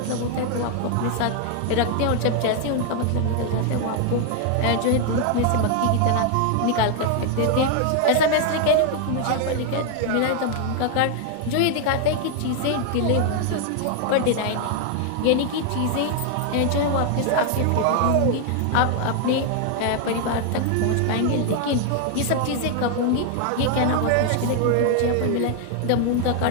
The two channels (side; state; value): both; different; correlation 0.00